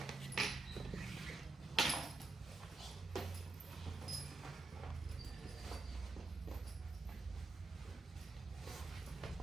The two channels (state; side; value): quieter; left; 3.3 dB